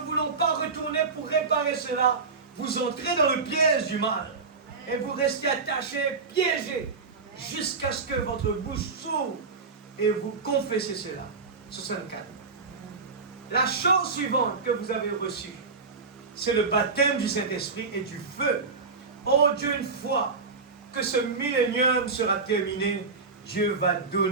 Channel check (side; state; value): left; quieter; 4.5 dB